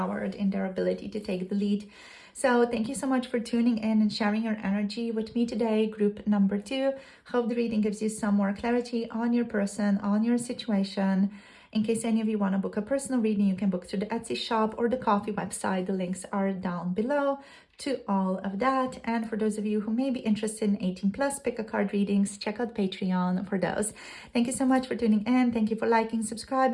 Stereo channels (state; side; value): identical; both; correlation 1.00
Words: in their ability to take the lead. So thank you so much for tuning in and sharing your energy with me today, group number 2. Hope the reading gives you some more clarity on your person, on your situation. In case any of you want to book a personal reading, you can book through the Etsy shop or the Coffee website. The links are down below to all of that. And for those of you who may be interested in 18 plus pick a card readings, check out Patreon for those. Thank you so much for tuning in. Thank you for liking,